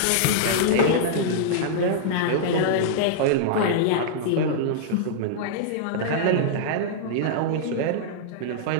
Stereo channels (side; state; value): both; different; correlation -0.02